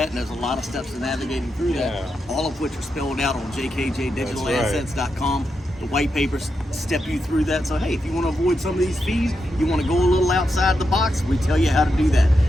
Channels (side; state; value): both; normal; correlation 0.85